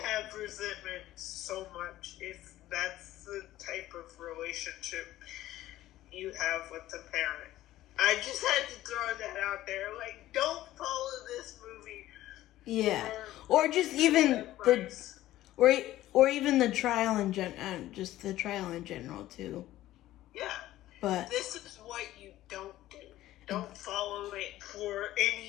have resentment so much if that's the type of relationship you have with the parent. I just had to throw that out there. Like, don't follow this movie. yeah. Or just even the or even the trial in just the trial in general too. Yeah. But this is what you don't do. Don't follow it for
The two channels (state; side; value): quieter; right; 14.8 dB